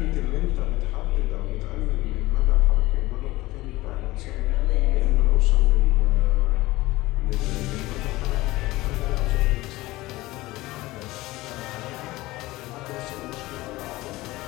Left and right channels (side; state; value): right; quieter; 19.1 dB